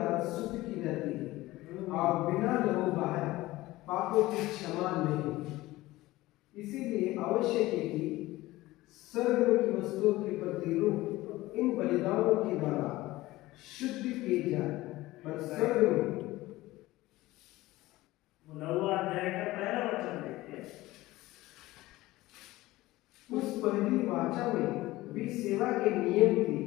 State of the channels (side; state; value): right; quieter; 18.1 dB